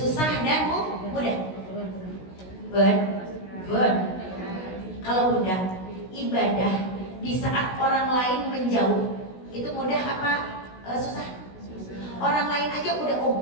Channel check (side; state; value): right; late; 16 ms